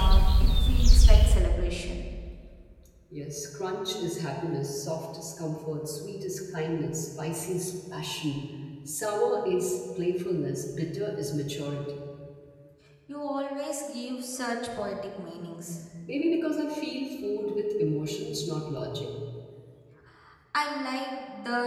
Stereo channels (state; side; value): identical; both; correlation 1.00